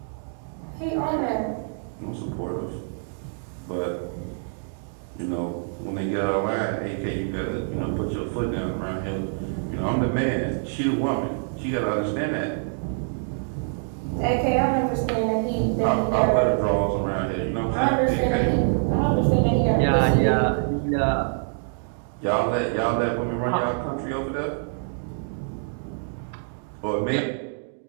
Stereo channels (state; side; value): silent; left; digital silence